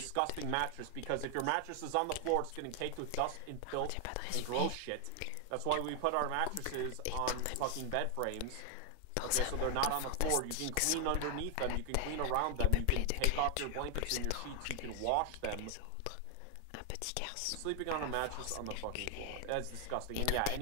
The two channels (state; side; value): different; both; correlation 0.00